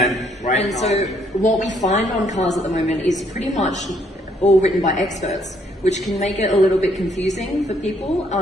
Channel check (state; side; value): normal; both; correlation 0.68